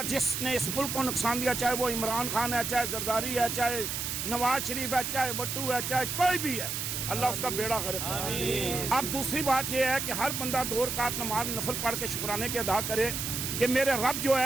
जिसने इस मुल्क को नुकसान दिया, चाहे वो इमरान खान है, चाहे जरदारी है, चाहे नवाज शरीफ है, चाहे वट्टू है, चाहे कोई भी है, अल्लाह उसका बेड़ा गर्क करे। अब दूसरी बात यह है कि हर बंदा 2 रकात नमाज नफल पढ़ के शुक्राने के अदा करे कि मेरे रब जो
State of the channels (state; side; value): noise; right; hiss, 3 dB below the sound